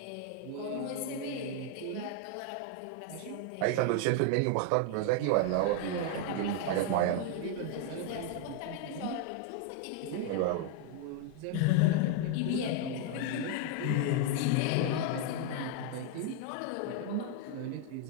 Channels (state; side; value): different; both; correlation 0.01